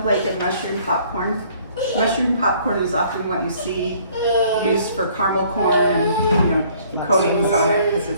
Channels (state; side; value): inverted; both; correlation -0.59